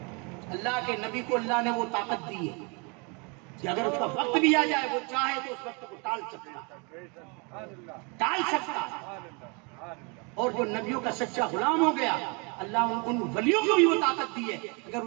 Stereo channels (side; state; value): left; quieter; 31.7 dB